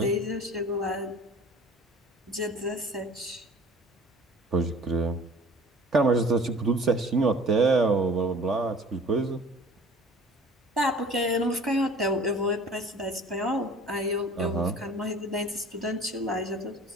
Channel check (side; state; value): both; normal; correlation 0.46